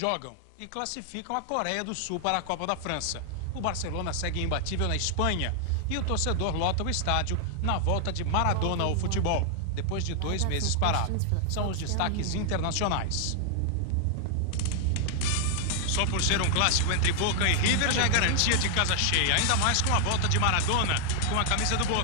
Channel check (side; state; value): both; different; correlation 0.00